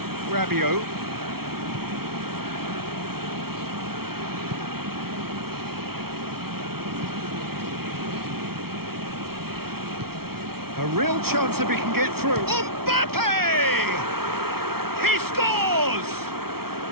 Rabiot. A real chance if he can get through. Mbappe! He scores!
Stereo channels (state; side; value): late; left; 0.94 ms